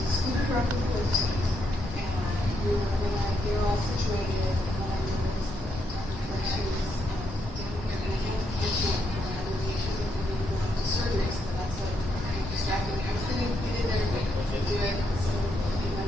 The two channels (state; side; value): normal; both; correlation 0.78